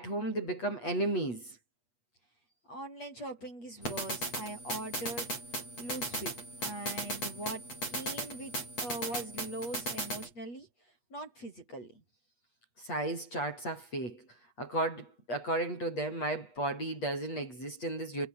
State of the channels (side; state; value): right; late; 8.4 ms